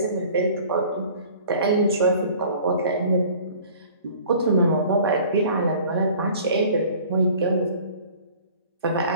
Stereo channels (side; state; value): both; inverted; correlation -0.48